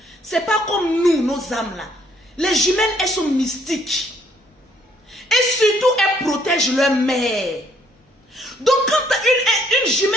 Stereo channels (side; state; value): both; normal; correlation 0.66